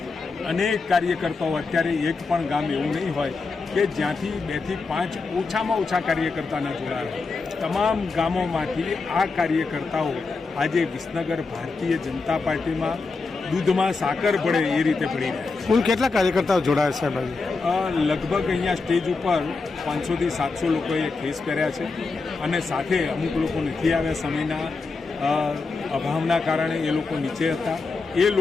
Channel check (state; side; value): quieter; right; 4.1 dB